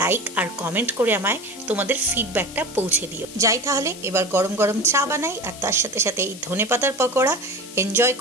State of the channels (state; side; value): noise; left; hiss, 15 dB below the sound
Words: লাইক আর কমেন্ট করে আমায় তোমাদের ফিডব্যাকটা পৌঁছে দিও। যাই তাহলে এবার গরম গরম চা বানাই, আর তার সাথে সাথে এই ধনেপাতার পকোড়া এনজয়